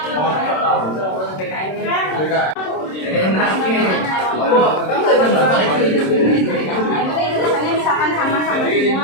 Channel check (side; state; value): right; late; 26 ms